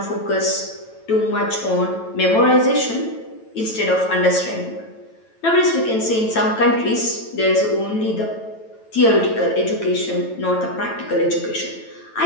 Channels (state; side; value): late; right; 9.1 ms